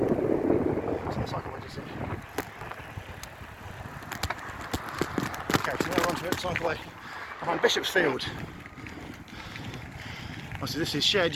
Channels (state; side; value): identical; both; correlation 1.00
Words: the cycleway just in. Okay, so now we're onto it, cycleway behind Bishopsfield. Obviously this is shared